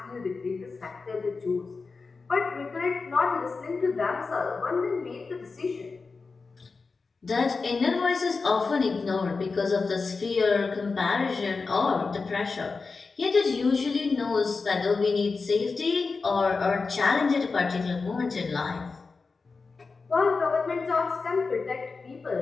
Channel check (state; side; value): quieter; right; 4.3 dB